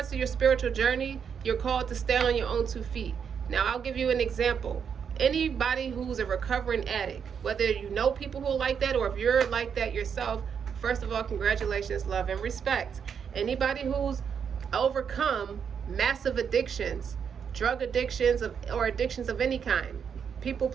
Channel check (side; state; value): left; quieter; 7.2 dB